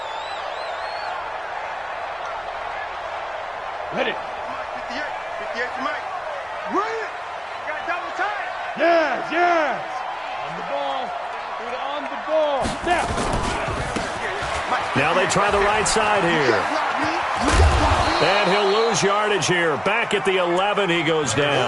Ready. 58 to Mike. Run it. Got double time. Yes. On the ball. Now. Now they try the right side here. And he'll lose yardage here. Back at the 11, he goes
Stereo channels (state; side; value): identical; both; correlation 1.00